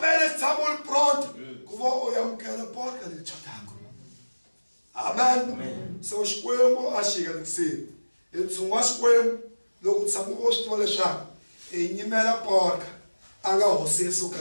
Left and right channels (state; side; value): inverted; both; correlation -1.00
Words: tshamo li pronto ku va u amukela porca leyi chotaka amen so xikwembu a xi hinganikiseni hi ntshungu wa xikwembu loko tshama u swi tiva leswaku hi nyimela porca a nga hosi Yesu